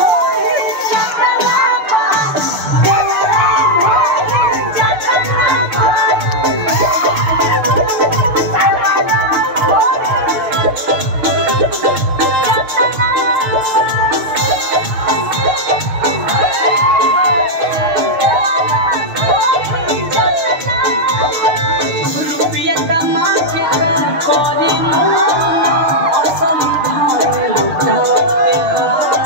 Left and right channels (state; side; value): late; left; 6.5 ms